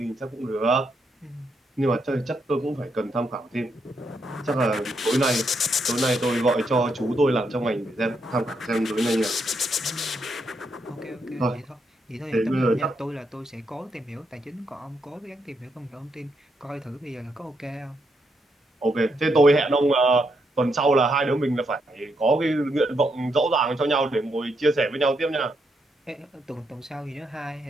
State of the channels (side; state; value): both; normal; correlation 0.79